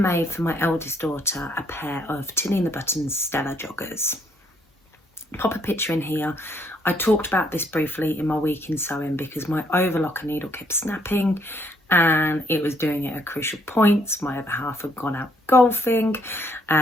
made for my eldest daughter a pair of Tinny and the Buttons Stella joggers. Pop a picture in here. I talked about this briefly in my week in sewing because my overlocker needle kept snapping and it was doing it at crucial points. My other half had gone out golfing,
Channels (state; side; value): normal; both; correlation 0.69